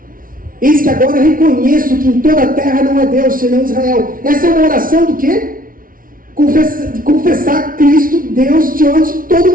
eis que agora reconheço que em toda a terra não há Deus senão Israel. Essa é uma oração do quê? Confessar Cristo, Deus, diante de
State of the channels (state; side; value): late; left; 0.41 ms